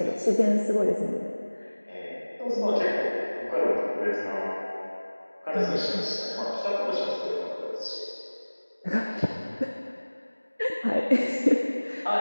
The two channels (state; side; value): inverted; both; correlation -1.00